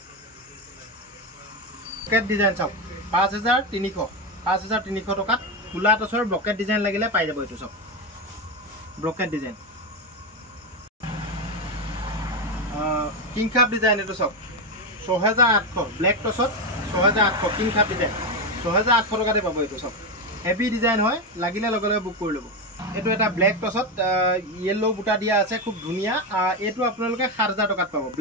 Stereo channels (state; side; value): normal; both; correlation 0.11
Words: ব্লকেট ডিজাইন চাওক 5300 টকাত ফুলা টচৰ ব্লকেট ডিজাইন লাগিলে পাই যাব এইটো চাওক blockade design king cup design এইটো চাওক 6800 ব্লেক টচত 6800 কিং কাপ ডিজাইন 6800 টকাতে পাব এইটো চাওক হেভি ডিজাইন হয় লাগিলে লগে লগে বুক কৰি ল'ব এইটো এটা ব্লেক টচত ইয়েলো বুটা দিয়া আছে খুব ধুনীয়া এইটো আপোনালোকে 7000 টকাত পাব